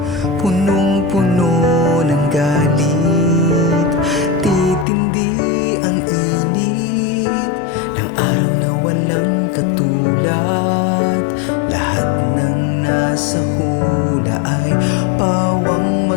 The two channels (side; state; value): right; drops out; at 4.9 s